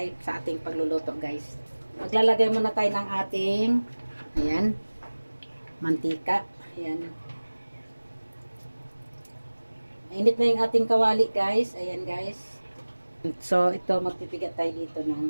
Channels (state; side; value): inverted; both; correlation -1.00